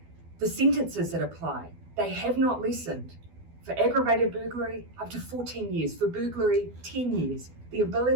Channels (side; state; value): left; late; 12 ms